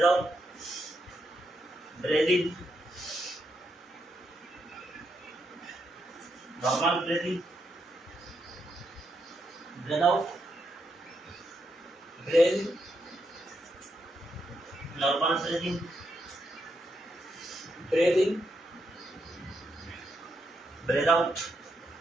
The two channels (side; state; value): both; normal; correlation 0.81